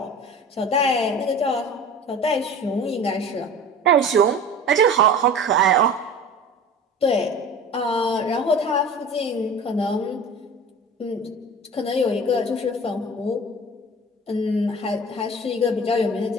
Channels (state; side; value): normal; both; correlation 0.39